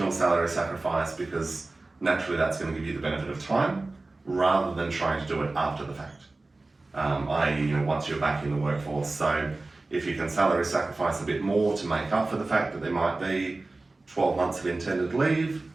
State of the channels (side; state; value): left; quieter; 3.2 dB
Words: salary sacrifice, because naturally that's going to give you the benefit of time, rather than trying to do it after the fact. I.e., you know, once you're back in the workforce. So if you can salary sacrifice a bit more to make up for the fact that there might be 12 months of intended leave,